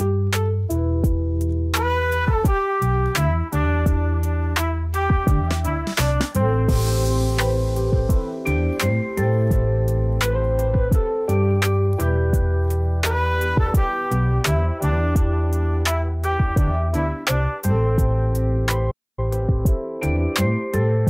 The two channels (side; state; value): both; identical; correlation 1.00